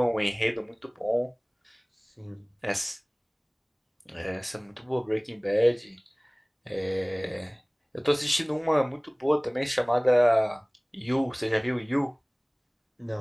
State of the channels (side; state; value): both; identical; correlation 1.00